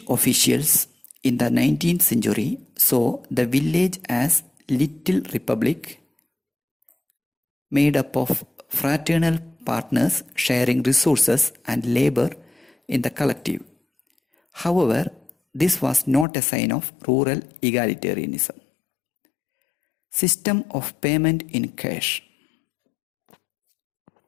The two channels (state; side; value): drops out; right; at 16.2 s